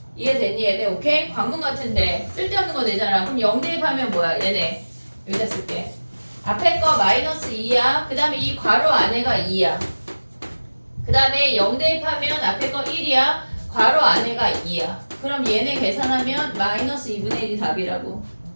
이해됐니 얘네? 오케이? 관문 같은데 쓸데없는 거 내잖아 그럼 0 대입하면 뭐야 얘네 여기다 쓸게 앞에 거 마이너스 2야 그 다음에 이 괄호 안에가 2야 그 다음에 0 대입하면 앞에 거 1이야 괄호 안에가 2야 그럼 얘네 계산하면 마이너스 2분의 1이 답이라고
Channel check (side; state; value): both; inverted; correlation -1.00